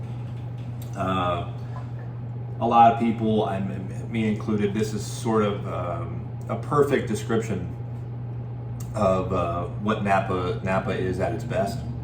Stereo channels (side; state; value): both; identical; correlation 1.00